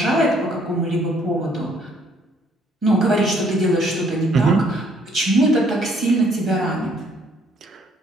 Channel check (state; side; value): normal; both; correlation 0.64